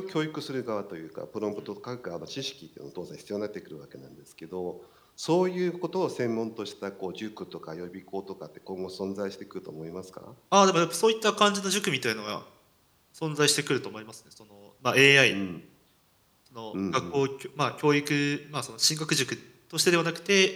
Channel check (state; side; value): identical; both; correlation 1.00